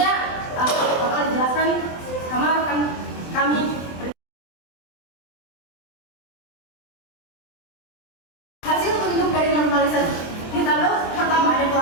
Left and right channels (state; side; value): late; right; 23 ms